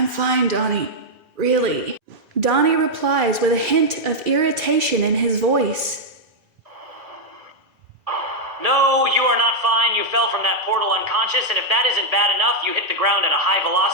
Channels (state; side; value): late; left; 2.4 ms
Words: fine, Donnie. Really. Donnie replies with a hint of irritation in his voice. No, you are not fine. You fell from that portal unconscious, and if that isn't bad enough, you hit the ground at a high